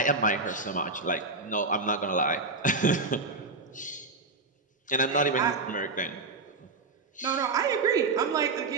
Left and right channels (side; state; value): left; quieter; 3.6 dB